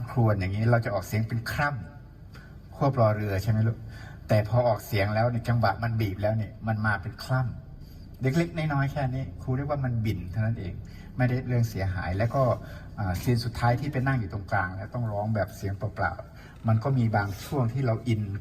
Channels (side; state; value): both; identical; correlation 1.00